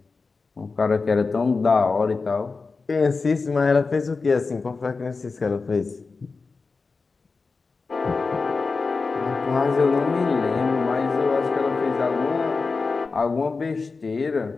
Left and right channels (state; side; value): quieter; right; 4.3 dB